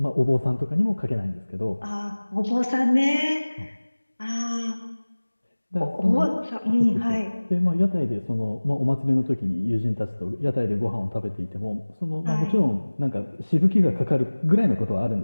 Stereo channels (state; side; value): inverted; both; correlation -1.00